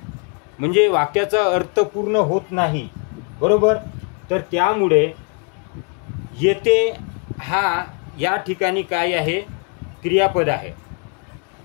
म्हणजे वाक्याचा अर्थ पूर्ण होत नाही. बरोबर. तर त्यामुळे येते हा या ठिकाणी काय आहे? क्रियापद आहे.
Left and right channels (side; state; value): right; quieter; 37.9 dB